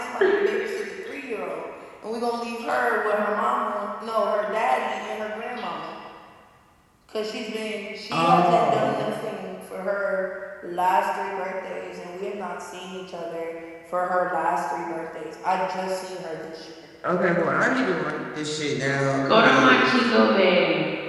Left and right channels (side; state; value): both; identical; correlation 1.00